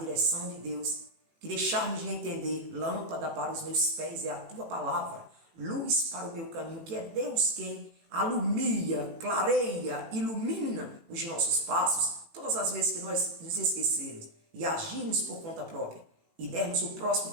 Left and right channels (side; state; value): left; late; 18 ms